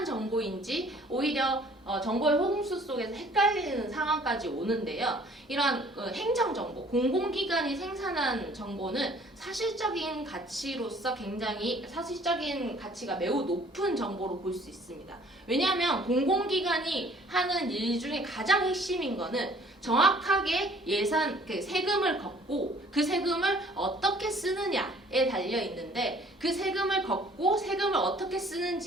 정보인지 오히려 정보의 홍수 속에서 헷갈리는 상황까지 오는데요. 이러한 행정정보, 공공기관이 생산한 정보는 사실적인 가치로서 굉장히 사실적인 가치가 매우 높은 정보로 볼 수 있습니다. 왜냐하면 공공기관이 하는 일 중에 가장 핵심인 거는 정확하게 세금을 걷고 그 세금을 어떻게 쓰느냐에 달려 있는데 그 세금을 걷고 세금을 어떻게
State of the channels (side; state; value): both; normal; correlation 0.55